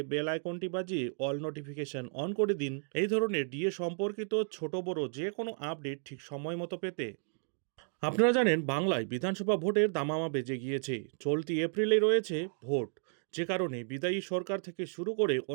বেল আইকনটি বাজিয়ে অল নোটিফিকেশন অন করে দিন এই ধরনের ডিএ সম্পর্কিত ছোট বড় যে কোনো আপডেট ঠিক সময় মতো পেতে। আপনারা জানেন, বাংলায় বিধানসভা ভোটের দামামা বেজে গিয়েছে। চলতি এপ্রিলে রয়েছে ভোট, যে কারণে বিদায়ী সরকার থেকে শুরু করে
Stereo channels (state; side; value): silent; left; 56 dB below the other